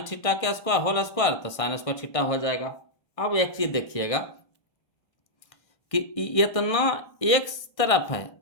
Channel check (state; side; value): late; right; 1.6 ms